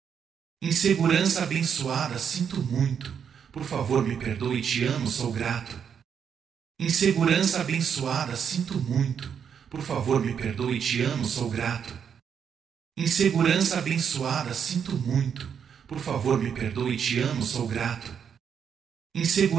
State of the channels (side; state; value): left; quieter; 7.6 dB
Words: Insegurança abençoada, sinto muito. Por favor, me perdoe, te amo, sou grato. Insegurança abençoada, sinto muito. Por favor, me perdoe, te amo, sou grato. Insegurança abençoada, sinto muito. Por favor, me perdoe, te amo, sou grato.